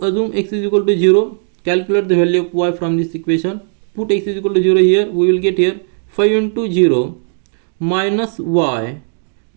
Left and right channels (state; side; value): silent; left; digital silence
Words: assume x is equal to 0, calculate the value of y from this equation, put x is equal to 0 here, we will get here 5 into 0 minus y